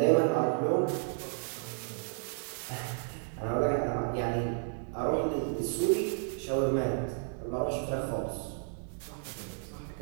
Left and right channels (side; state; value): left; silent; 56 dB below the other